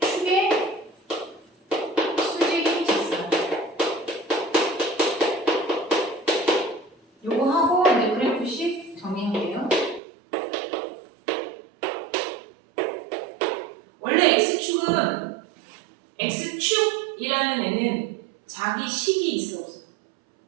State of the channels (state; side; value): drops out; left; at 10.0 s